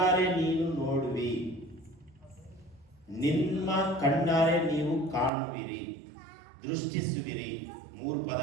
ನೀನು ನೋಡುವಿ, ನಿಮ್ಮ ಕಣ್ಣಾರೆ ನೀವು ಕಾಣುವಿರಿ, ದೃಷ್ಟಿಸುವಿರಿ. 3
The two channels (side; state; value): left; drops out; at 5.3 s